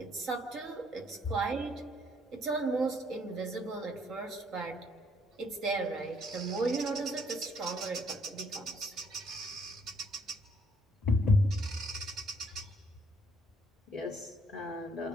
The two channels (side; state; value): both; normal; correlation 0.67